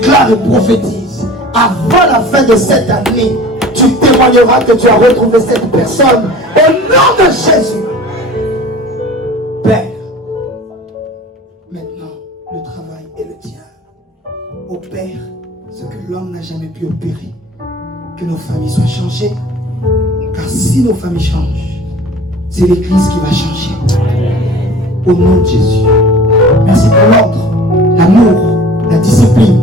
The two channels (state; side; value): normal; both; correlation 0.43